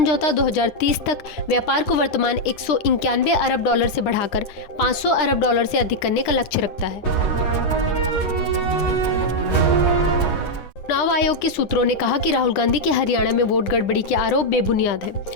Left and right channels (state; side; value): late; right; 9.9 ms